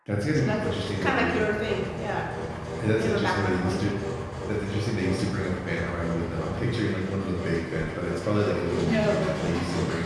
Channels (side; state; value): both; identical; correlation 1.00